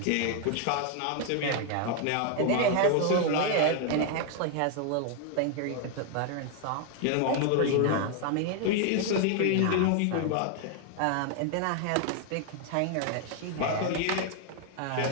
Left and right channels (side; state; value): both; different; correlation 0.00